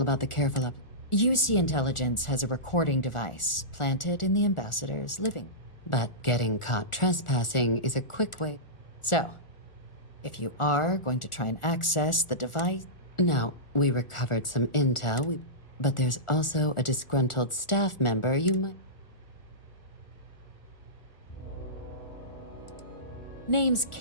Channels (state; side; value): late; right; 1.4 ms